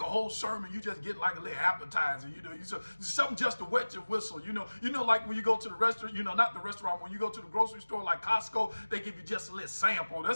whole sermon, you just get like a little appetizer, something just to wet your whistle, like when you go to the restaurant, not the restaurant, when you go to the grocery store like Costco, they give you just a little sample.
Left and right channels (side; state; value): both; inverted; correlation -1.00